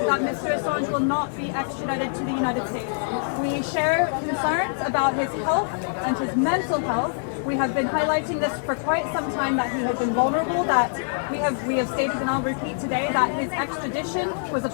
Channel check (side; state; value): right; silent; digital silence